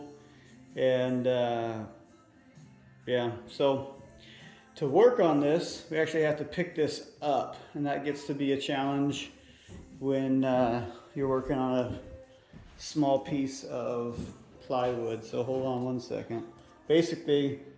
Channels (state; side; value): identical; both; correlation 1.00